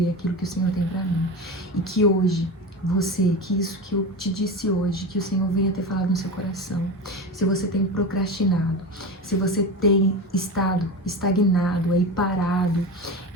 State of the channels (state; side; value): normal; both; correlation 0.25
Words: aquilo que o Senhor tem pra mim. E que hoje, que isso que eu te disse hoje, que o Senhor venha ter falado no seu coração. Se você tem procrastinado, se você tem estado estagnado, aí parado,